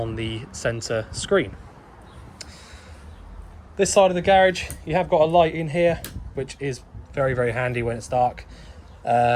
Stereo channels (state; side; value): identical; both; correlation 1.00